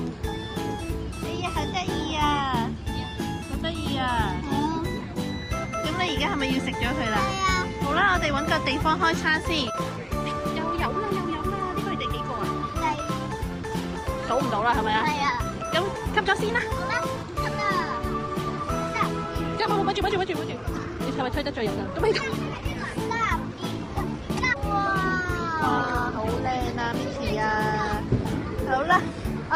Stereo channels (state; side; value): identical; both; correlation 1.00